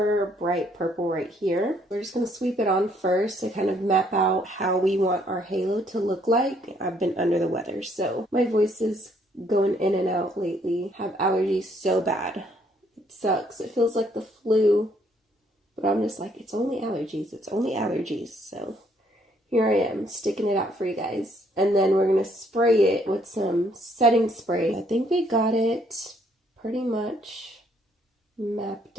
bright purple right here. We're just going to sweep it on first to kind of map out how we want our halo to look like. I've been under the weather, so my voice is going in and out lately. I have allergies so bad. It sucks. It feels like the flu. But I'm just like, it's only allergies. It's only allergies. So here I am, sticking it out for you guys. And then we're going to spray it with some setting spray. I think we got it pretty much mapped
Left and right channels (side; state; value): both; normal; correlation 0.67